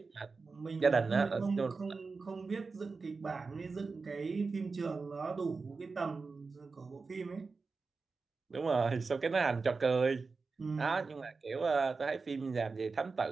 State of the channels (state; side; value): quieter; left; 4.3 dB